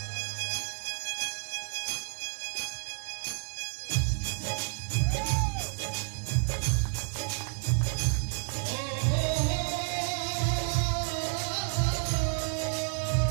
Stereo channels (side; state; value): left; silent; digital silence